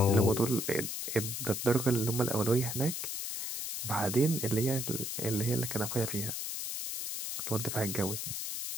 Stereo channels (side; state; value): left; noise; hiss, 4 dB below the sound